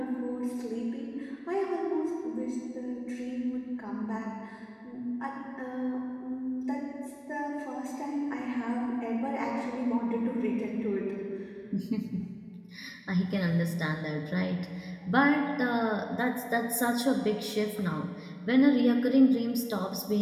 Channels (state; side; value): identical; both; correlation 1.00